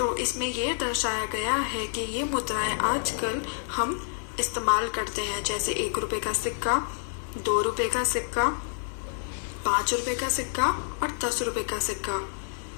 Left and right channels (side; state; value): right; silent; 59 dB below the other